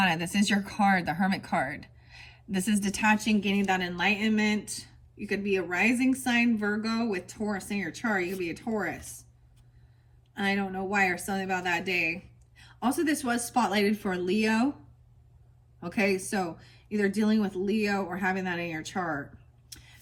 This is your card, the Hermit card. This is detaching, gaining that enlightenment. You could be a rising sign Virgo with Taurus in your chart. You could be a Taurus. I don't know why, or something about that day. Also, this was spotlighted for Leo. Okay, so either dealing with Leo or having that in your chart.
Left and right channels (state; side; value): identical; both; correlation 1.00